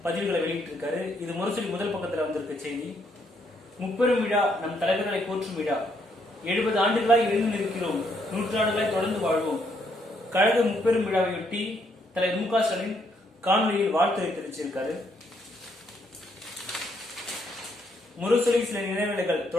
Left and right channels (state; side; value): normal; both; correlation 0.73